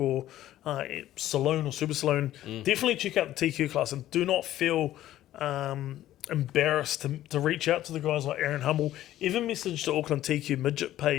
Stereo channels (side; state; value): right; quieter; 13.6 dB